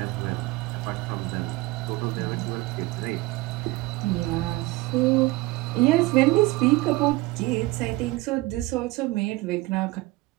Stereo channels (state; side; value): quieter; left; 20.3 dB